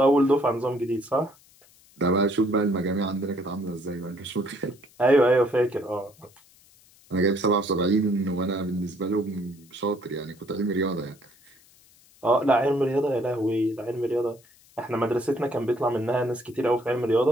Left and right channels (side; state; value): left; noise; hiss, 28 dB below the sound